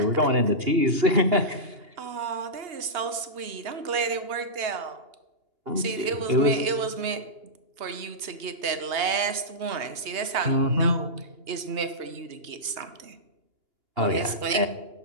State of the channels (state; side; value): late; left; 2.8 ms